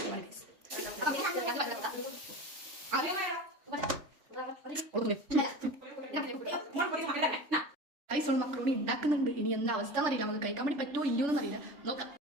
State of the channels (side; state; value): left; late; 3.4 ms